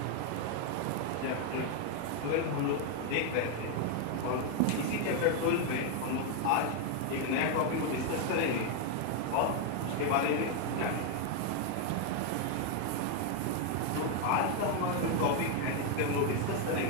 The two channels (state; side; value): different; both; correlation 0.01